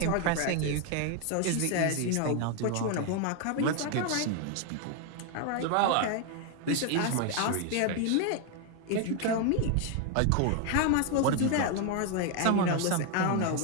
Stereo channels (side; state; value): both; different; correlation 0.01